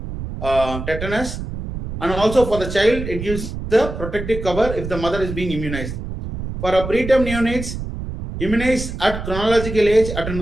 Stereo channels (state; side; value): noise; right; rumble, 7 dB below the sound